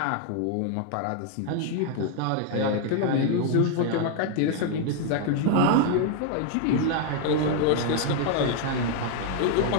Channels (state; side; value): different; both; correlation 0.00